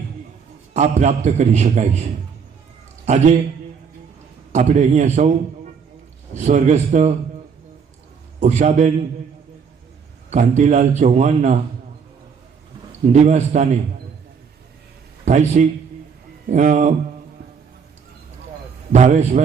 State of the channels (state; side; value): quieter; left; 6.2 dB